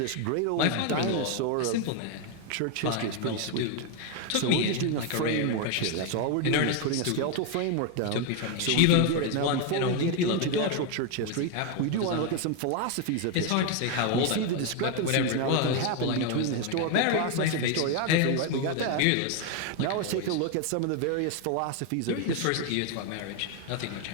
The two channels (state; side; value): different; both; correlation 0.01